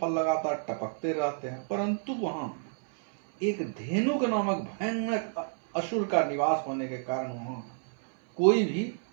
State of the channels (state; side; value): silent; left; 58 dB below the other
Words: लगातार टपकते रहते हैं, परंतु वहां एक धेनुक नामक भयानक असुर का निवास होने के कारण वहां कोई भी